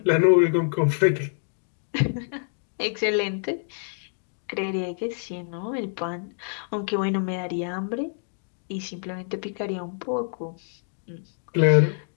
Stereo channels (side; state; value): right; silent; digital silence